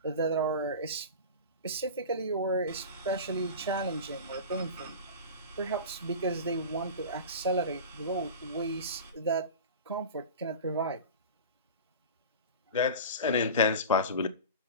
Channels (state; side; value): inverted; both; correlation -0.32